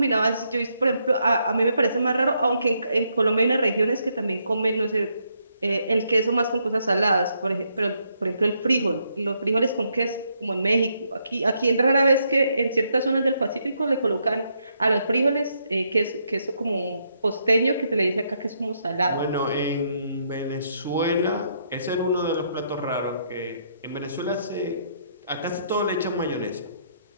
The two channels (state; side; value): inverted; both; correlation -0.76